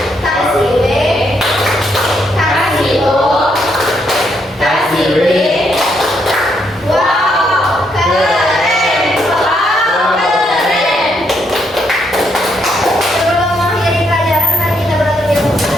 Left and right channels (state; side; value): normal; both; correlation 0.75